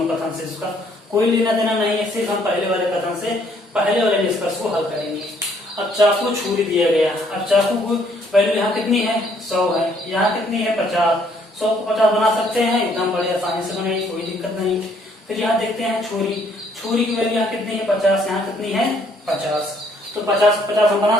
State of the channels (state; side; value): normal; both; correlation 0.65